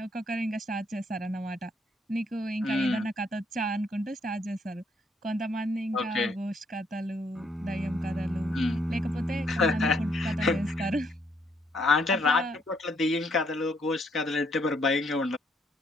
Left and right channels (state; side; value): normal; both; correlation 0.71